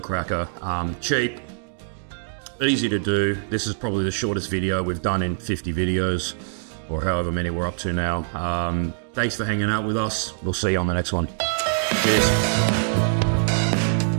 cracker. Cheap. Easy to do. This is probably the shortest video we've done in 50 videos, or however many we're up to now. Thanks for hanging out with us. We'll see you on the next one. Cheers.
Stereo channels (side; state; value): left; silent; digital silence